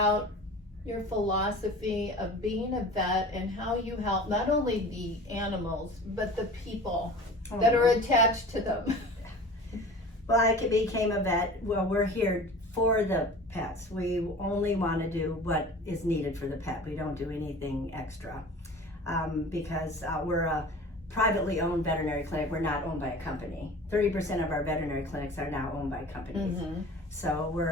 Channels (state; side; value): normal; both; correlation 0.40